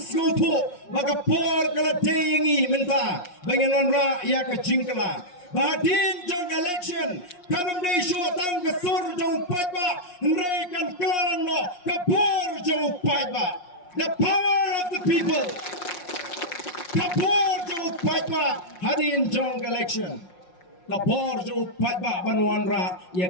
baga por kala teyengi menta bangin onra ia ka jingkala Badin jong election kanam dei shu tang ke sur jong paiba nrei kan klaran no kapor jong paiba the power of the people kapor jong paiba hadin jong election kapor jong paiba banwan ra ya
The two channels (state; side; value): late; right; 5.6 ms